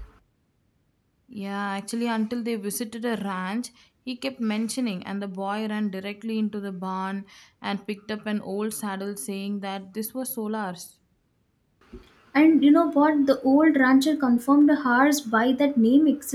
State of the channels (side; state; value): both; identical; correlation 1.00